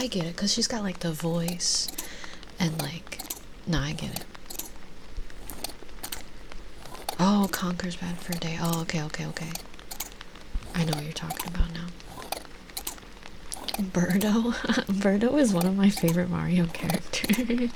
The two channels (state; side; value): identical; both; correlation 1.00